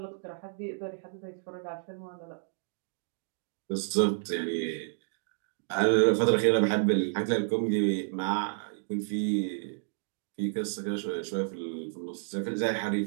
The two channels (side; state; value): left; silent; digital silence